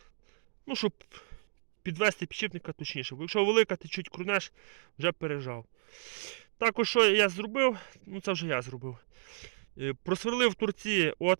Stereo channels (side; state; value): left; silent; digital silence